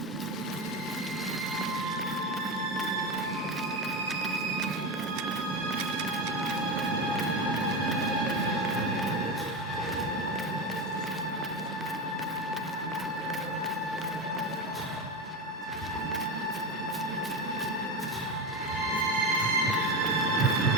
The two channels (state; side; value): normal; both; correlation 0.19